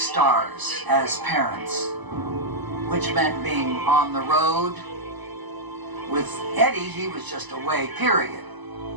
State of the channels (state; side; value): late; left; 1.0 ms